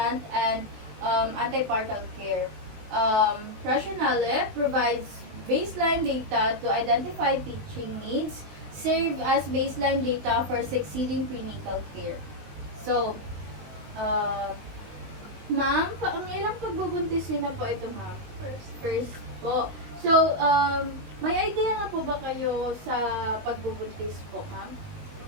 and antepartum care. Rationale provides baseline data to identify teaching needs, serve as baseline data for succeeding prenatal care. So, ma'am, ang ilang pagbubuntisin na po ito, ma'am? First po. So, may idea na po ba kayo sa pagbubuntis po, ma'am?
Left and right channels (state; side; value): late; left; 19 ms